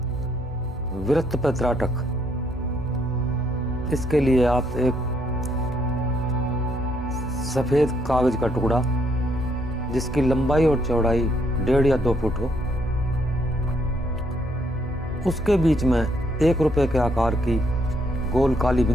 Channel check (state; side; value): normal; both; correlation 0.71